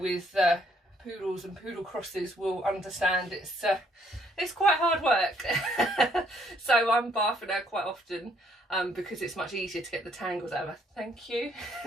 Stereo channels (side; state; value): both; normal; correlation 0.67